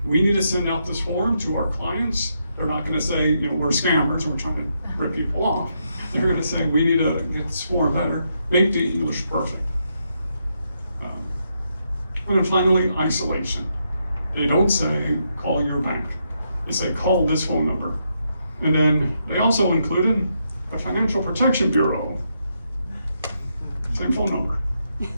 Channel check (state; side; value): inverted; both; correlation -0.80